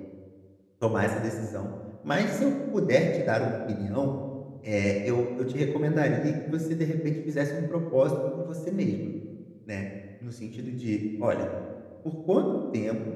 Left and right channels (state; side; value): identical; both; correlation 1.00